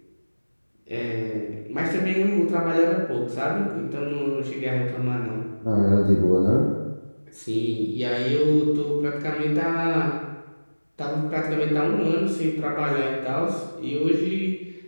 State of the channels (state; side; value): inverted; both; correlation -1.00